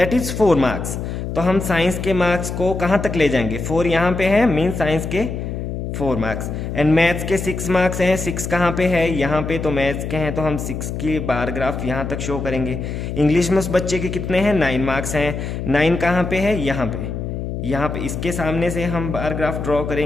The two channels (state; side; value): noise; left; hum, 5 dB below the sound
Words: इज 4 मार्क्स। तो हम साइंस के मार्क्स को कहाँ तक ले जाएंगे, 4 यहाँ पे है, मीन साइंस के 4 मार्क्स, एंड मैथ्स के 6 मार्क्स हैं, 6 कहाँ पे है, यहाँ पे, तो मैथ्स के हैं तो हम 6 की बार ग्राफ यहाँ तक शो करेंगे। इंग्लिश में उस बच्चे के कितने हैं, 9 मार्क्स हैं, 9 कहाँ पे है, यहाँ पे इसके सामने से हम बार ग्राफ ड्रॉ